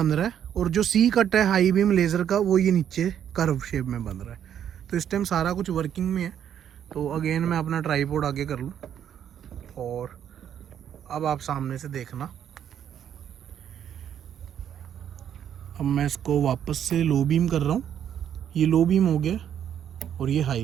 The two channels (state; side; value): quieter; left; 9.5 dB